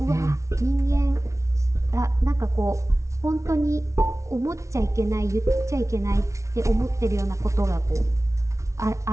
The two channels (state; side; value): late; left; 0.14 ms